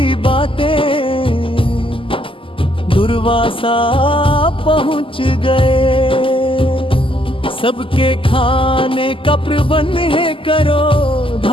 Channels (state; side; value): late; right; 0.25 ms